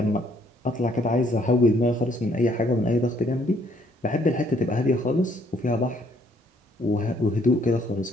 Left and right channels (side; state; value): both; normal; correlation 0.66